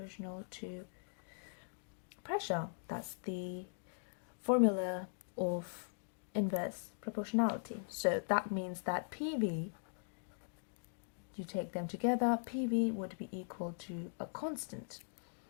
to pressure. That's the formula of inverse proportionality. So that means that PV, you take them together, PV would be equal to a constant,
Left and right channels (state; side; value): silent; right; digital silence